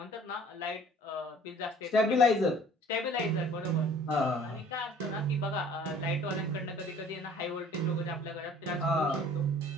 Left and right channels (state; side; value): normal; both; correlation 0.51